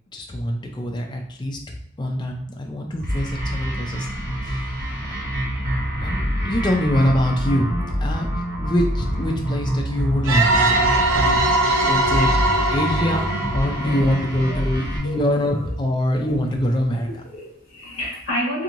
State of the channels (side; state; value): both; normal; correlation 0.60